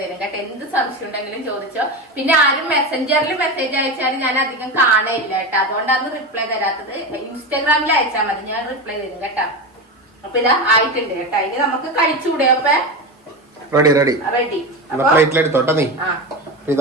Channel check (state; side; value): normal; both; correlation 0.21